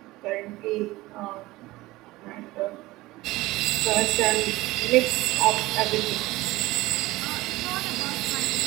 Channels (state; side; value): quieter; left; 19.1 dB